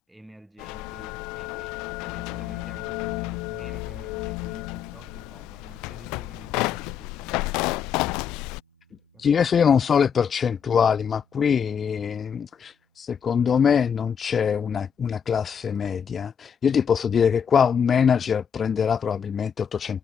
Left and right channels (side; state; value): right; quieter; 7.4 dB